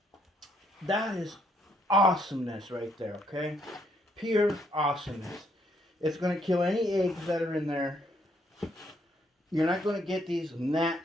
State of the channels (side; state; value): both; normal; correlation 0.71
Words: That is awesomeness right there, okay? Pure awesomeness. It's going to kill any eggs that are in there. You're not going to get these